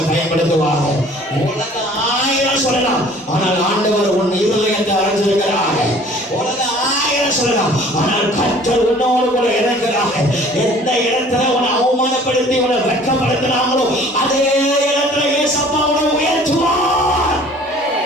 பயன்படுத்துவாரு. உலக 1000 சொல்லலாம், ஆனால் ஆண்டவர் உன் இருதயத்தை அறிஞ்சிருக்கிறார். உலக 1000 சொல்லலாம், ஆனால் கர்த்தர் உன்னோடு கூட இருக்கிறார். எந்த இடத்துல உன்னை அவமானப்படுத்தி உன்னை வெட்கப்படுத்தினாங்களோ அதே இடத்துல இயேசப்பா உன்னை உயர்த்துவார்.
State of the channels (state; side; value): normal; both; correlation 0.51